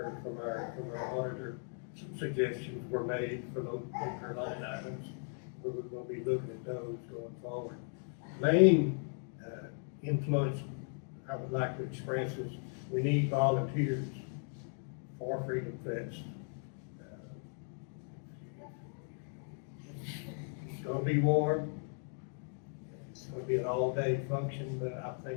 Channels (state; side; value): silent; right; 53 dB below the other